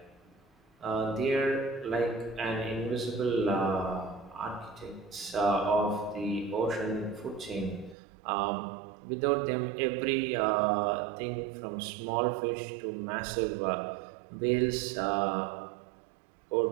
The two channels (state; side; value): drops out; left; at 8.0 s